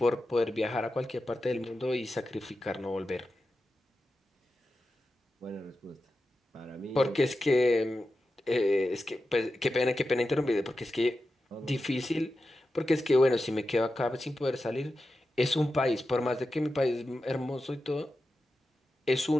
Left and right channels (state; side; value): normal; both; correlation 0.91